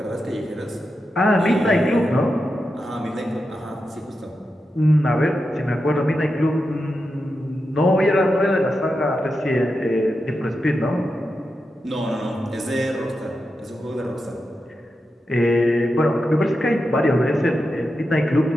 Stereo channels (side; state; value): both; normal; correlation 0.89